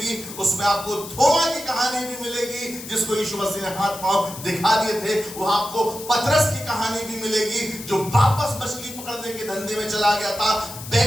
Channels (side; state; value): left; noise; hiss, 12 dB below the sound